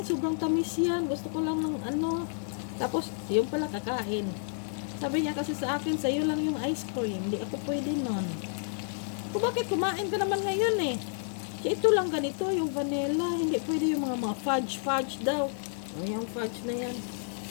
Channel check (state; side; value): silent; right; 58 dB below the other